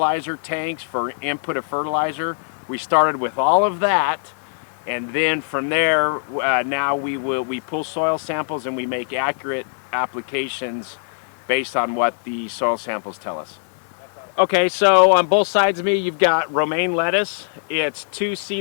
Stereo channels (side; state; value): right; silent; 60 dB below the other